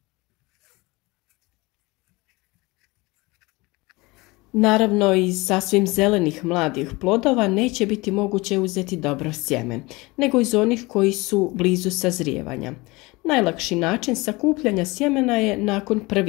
Naravno, iz sasvim zelenih mladih plodova neće biti moguće uzeti dobro sjeme, nego iz onih koji su blizu sazrijevanja. Najlakši način sakupljanja sjemena je nakon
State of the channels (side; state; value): right; quieter; 23.3 dB